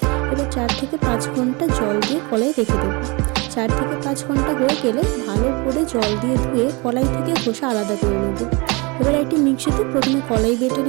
এবার 4 থেকে 5 ঘন্টা জল দিয়ে কলাই রেখে দেবো। 4 থেকে 5 ঘন্টা হয়ে গেলে ভালো করে জল দিয়ে ধুয়ে কলাই থেকে খোসা আলাদা করে নেব। এবার একটি মিক্সিতে প্রথমে কলাই বেটে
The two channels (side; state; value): left; quieter; 27.9 dB